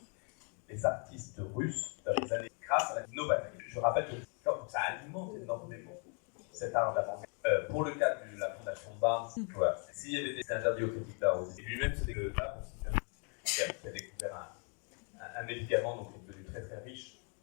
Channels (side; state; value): right; quieter; 38.2 dB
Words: Les artistes russes, dans les années, grâce à la novaterie, je rappelle que ça alimente énormément cet art d'avant-garde. Pour le cas de la fondation Barnes, voilà, s'il y avait des interdits aux critiques d'art aussi, et lui-même c'est des là, qui a découvert un médicament donc, qui est devenu très très riche